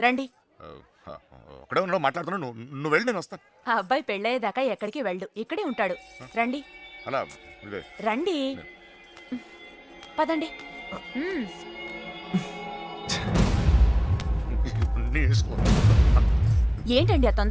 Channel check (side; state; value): both; identical; correlation 1.00